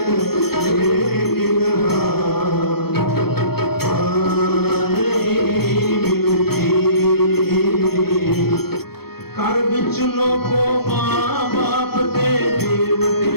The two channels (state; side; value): late; right; 0.96 ms